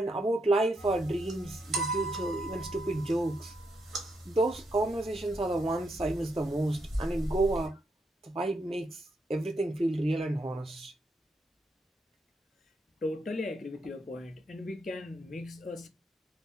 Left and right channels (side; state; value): both; normal; correlation 0.80